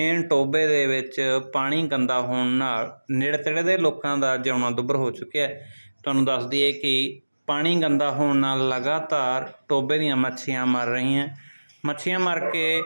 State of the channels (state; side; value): inverted; both; correlation -1.00